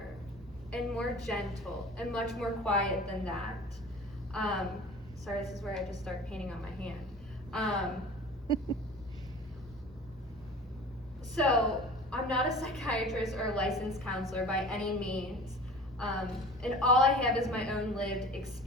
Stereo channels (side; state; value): both; normal; correlation 0.41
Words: and more gentle and much more quiet than that. Sorry, this is where I just start painting on my hand. So, I'm not a psychiatrist or a licensed counselor by any means, and all I have is my own lived